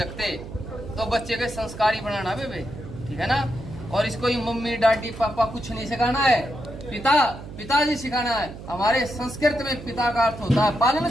तो बच्चे के संस्कारी बनाना बे, ठीक है ना। और इसको ही मम्मी डैडी पापा कुछ नहीं सिखाना है, पिताजी सिखाना है। हमारे संस्कृत में पिता का अर्थ होता है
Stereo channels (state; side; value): noise; right; hum, 13 dB below the sound